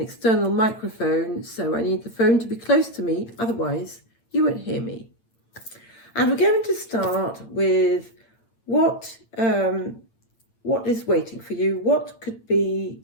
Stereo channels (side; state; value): right; late; 8.9 ms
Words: microphone, so I need the phone to be close to me, otherwise you won't hear me. And we're going to start with what is waiting for you, what could be